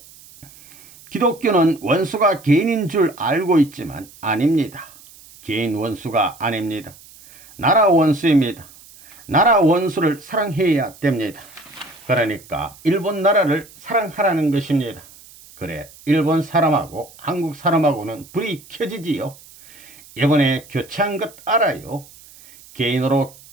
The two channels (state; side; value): noise; right; hiss, 22 dB below the sound